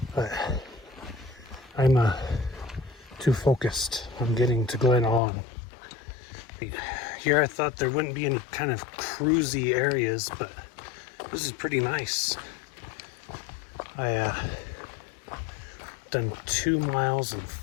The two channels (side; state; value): right; drops out; at 5.2 s